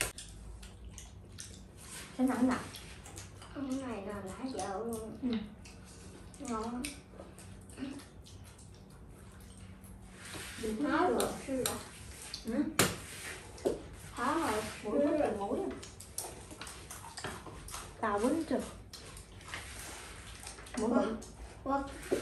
Cái nặng nặng. Cái này là lá dậu luôn. Ngon. Nói rồi sư là. Hả rồi, Mũi rất là mũi. Tao quýnh chưa? Mũi bự.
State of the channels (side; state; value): both; identical; correlation 1.00